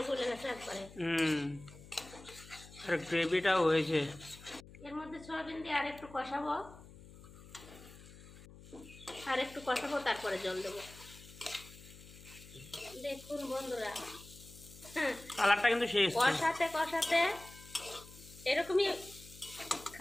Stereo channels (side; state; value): left; noise; hum, 18 dB below the sound